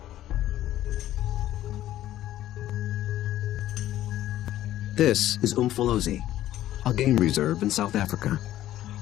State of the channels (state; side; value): quieter; right; 13.4 dB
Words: This is Umfolozi, a game reserve in South Africa.